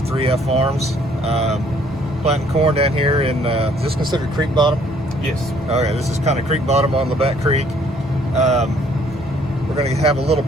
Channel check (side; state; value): both; normal; correlation 0.62